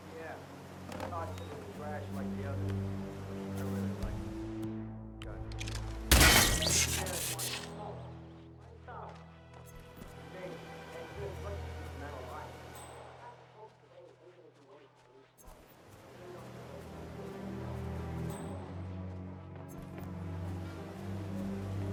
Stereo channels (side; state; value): both; identical; correlation 1.00